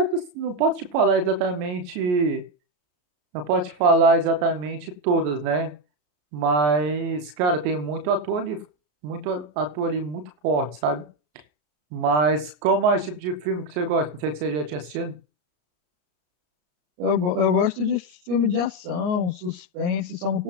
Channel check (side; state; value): left; late; 33 ms